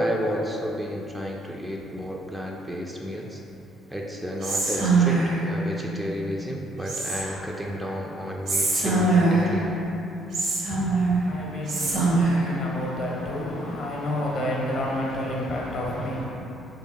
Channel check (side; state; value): both; normal; correlation 0.66